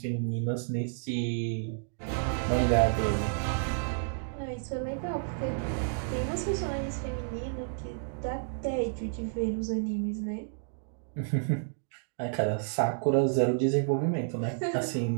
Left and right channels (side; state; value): left; silent; digital silence